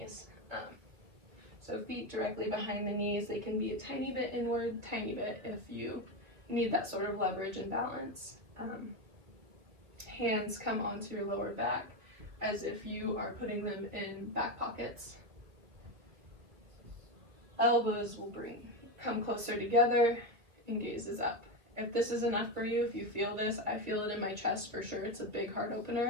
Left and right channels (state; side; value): late; left; 2.4 ms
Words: So feet directly behind the knees, they can be a tiny bit inward, tiny bit if you need that sort of leverage and balance. Hands come onto your lower back as if you are putting them in back pockets. Elbows will come closer together and gazes up. If this is enough for you, if you feel this, I feel it in my chest for sure, it's a big heart